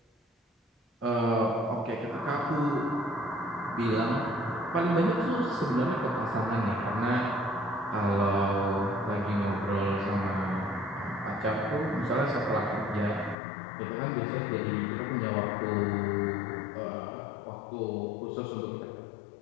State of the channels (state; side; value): drops out; right; at 13.4 s